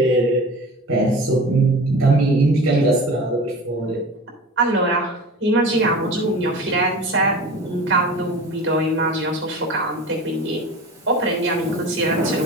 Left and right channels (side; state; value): both; normal; correlation 0.35